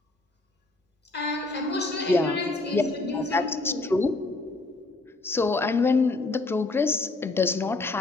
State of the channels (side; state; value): right; quieter; 3.2 dB